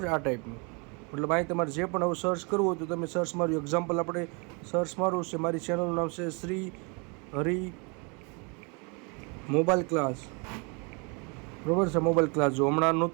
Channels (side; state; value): left; quieter; 32.6 dB